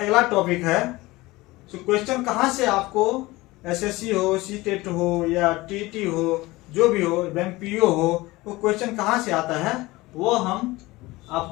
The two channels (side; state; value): right; quieter; 20.3 dB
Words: टॉपिक है तो क्वेश्चन कहाँ से आपको एसएससी हो, सीटेट हो या टीटी हो, जो भी हो, बैंक पीओ हो, वो क्वेश्चन कहाँ से आता है वो हम